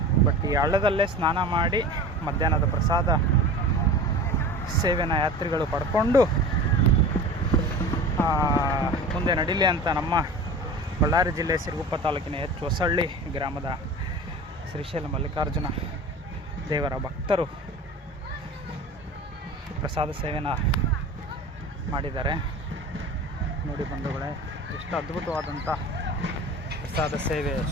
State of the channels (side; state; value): both; normal; correlation 0.36